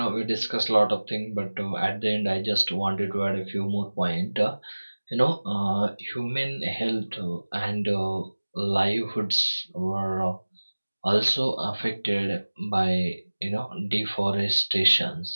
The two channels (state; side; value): inverted; both; correlation -1.00